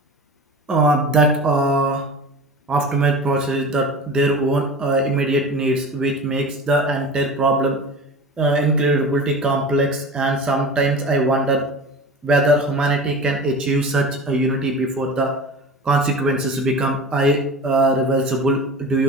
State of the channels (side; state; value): both; normal; correlation 0.34